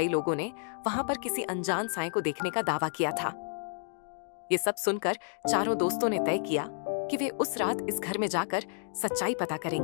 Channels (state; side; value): silent; right; digital silence